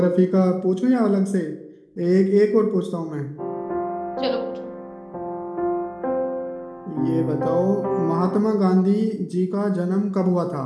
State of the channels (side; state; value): both; identical; correlation 1.00